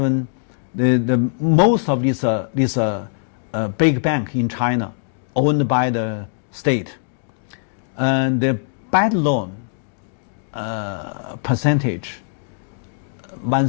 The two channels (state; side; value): silent; right; digital silence